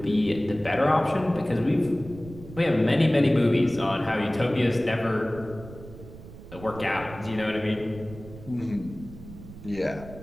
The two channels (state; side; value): noise; right; rumble, 16 dB below the sound